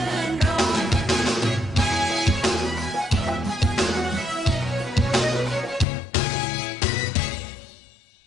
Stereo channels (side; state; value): right; drops out; at 5.9 s